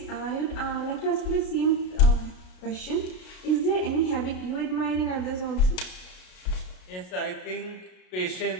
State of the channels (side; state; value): right; late; 33 ms